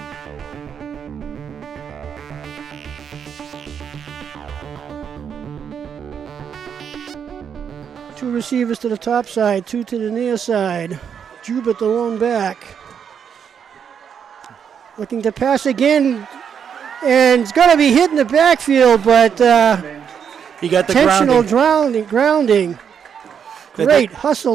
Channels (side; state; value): left; quieter; 7.6 dB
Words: Two receivers to the top side, two to the near side. Jubert the lone back. Looking to pass again, and it's going to be hit in the backfield, but he got the intentional grounding. Great hustle